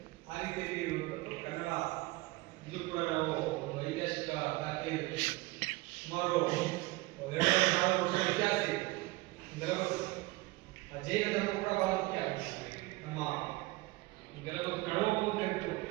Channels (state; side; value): quieter; left; 22.1 dB